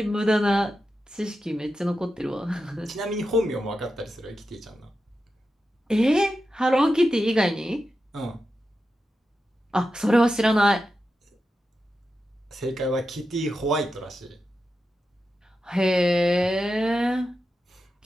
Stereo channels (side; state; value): both; normal; correlation 0.90